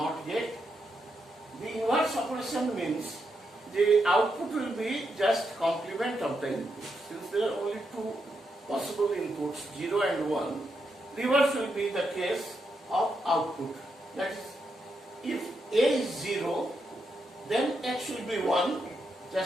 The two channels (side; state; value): both; normal; correlation 0.83